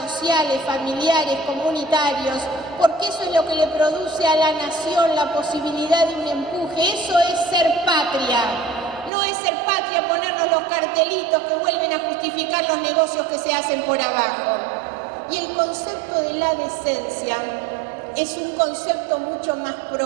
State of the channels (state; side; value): drops out; left; at 9.1 s